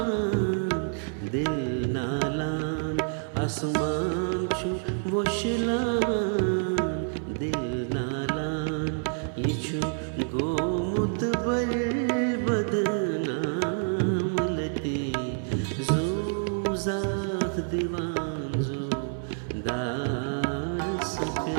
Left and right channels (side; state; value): left; silent; digital silence